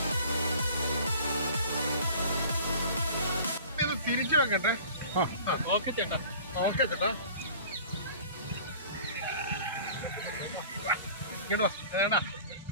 ഇത് തിരിച്ചു വെക്കട്ടെ. ഓക്കെ ചേട്ടാ, ഓക്കെ ചേട്ടാ, ഇങ്ങോട്ട് വാ. ചേട്ടാ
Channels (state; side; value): inverted; both; correlation -0.45